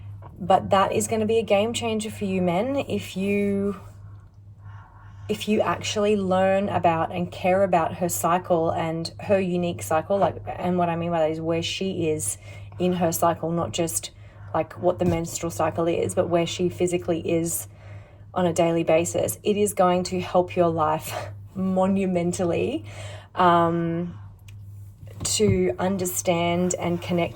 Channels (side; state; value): both; identical; correlation 1.00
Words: But that is going to be a game changer for you men if you actually learn about and care about her cycle and her unique cycle, like, and what I mean by that is where she is in her cycle, not just like what the menstrual cycle is, but where she physically is on a daily basis. It is going to help your life monumentally to understand and